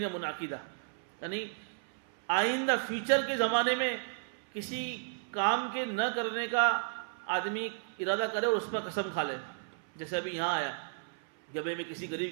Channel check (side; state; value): left; silent; 55 dB below the other